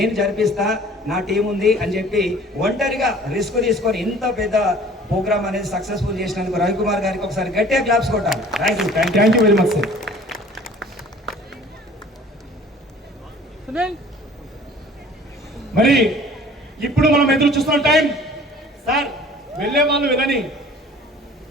జరిపిస్తా, నా టీం ఉంది అని చెప్పి ఒంటరిగా రిస్క్ తీసుకొని ఇంత పెద్ద ప్రోగ్రామ్ అనేది సక్సెస్ఫుల్ చేసినందుకు రవికుమార్ గారికి ఒకసారి గట్టిగా క్లాప్స్ కొట్టాలి. Thank you very much sir. మరి ఇప్పుడు మనం ఎదురు చూస్తున్న టైం సార్, వెళ్ళే వాళ్ళు వెళ్ళని,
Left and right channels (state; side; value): normal; both; correlation 0.49